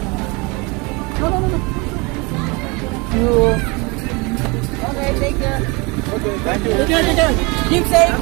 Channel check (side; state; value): left; quieter; 27.7 dB